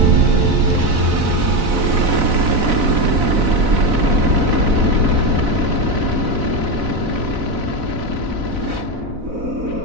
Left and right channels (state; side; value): late; left; 4.0 ms